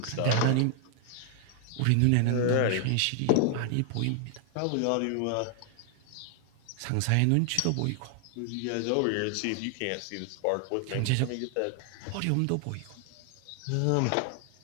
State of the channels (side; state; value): both; different; correlation 0.00